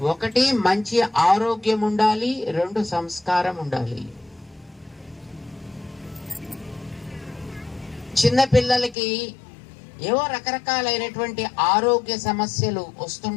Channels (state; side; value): drops out; right; at 9.0 s